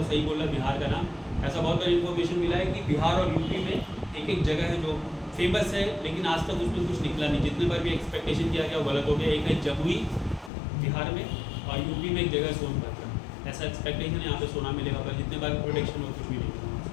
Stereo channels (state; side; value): drops out; right; at 10.5 s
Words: सही बोला बिहार का नाम, ऐसा बहुत बार इन्फॉर्मेशन मिला है कि बिहार और यूपी में एक एक जगह है जो फेमस है, लेकिन आज तक उसमें कुछ निकला नहीं। जितने बार भी एक्सपेक्टेशन किया गया वो गलत हो गया। एक है जमुई बिहार में, और यूपी में एक जगह सोनभद्र। ऐसा एक्सपेक्टेशन यहाँ पे सोना मिलेगा, पर जितने बार प्रोडिक्शन हो कुछ भी नहीं मिला।